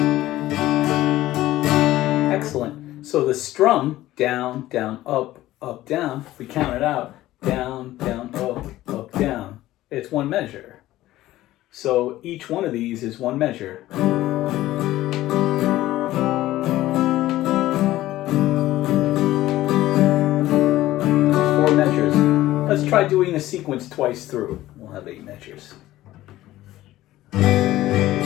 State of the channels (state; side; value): quieter; right; 15.5 dB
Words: Excellent. So the strum, down, down, up, up, down, if we count it out, down, down, up, down. It's one measure. So each one of these is one measure. Four measures. Let's try doing the sequence twice through. We'll have 8 measures.